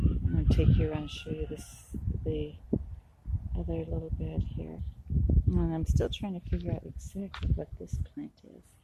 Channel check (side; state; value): both; identical; correlation 1.00